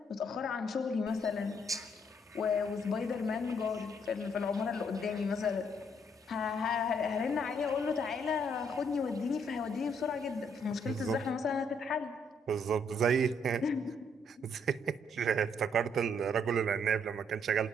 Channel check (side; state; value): both; normal; correlation 0.70